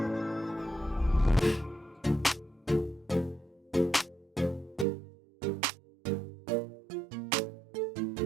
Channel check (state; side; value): drops out; left; at 4.9 s